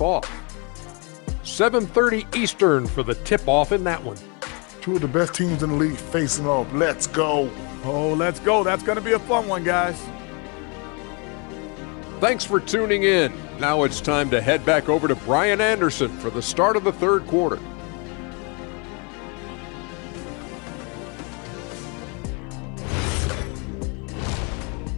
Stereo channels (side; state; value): right; quieter; 33.1 dB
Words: off. 7:30 Eastern for the tip-off in that one. Two of the best teams in the league facing off. Let's go. Oh, let's go. That's going to be a fun one, guys. Thanks for tuning in. Now it's time to head back over to Brian Anderson for the start of the third quarter.